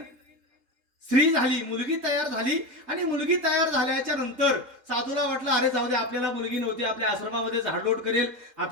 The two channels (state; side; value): late; left; 3.7 ms